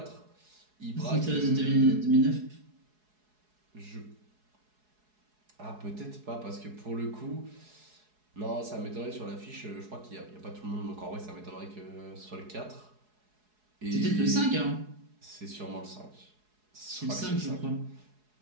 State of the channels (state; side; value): late; left; 4.7 ms